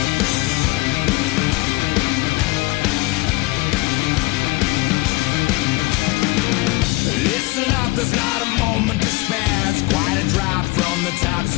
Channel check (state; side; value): quieter; right; 22.5 dB